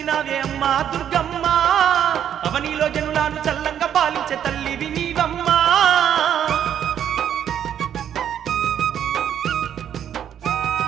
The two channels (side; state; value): left; quieter; 9.6 dB